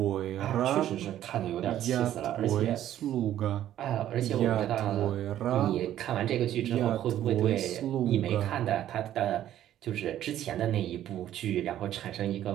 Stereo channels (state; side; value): quieter; left; 12.0 dB